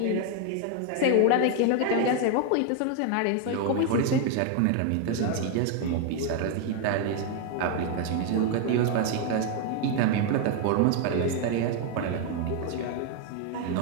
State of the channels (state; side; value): different; both; correlation 0.01